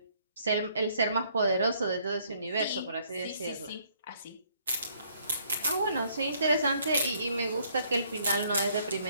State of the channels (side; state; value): both; inverted; correlation -0.66